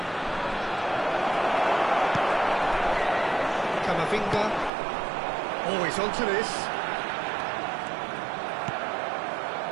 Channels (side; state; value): left; drops out; at 4.7 s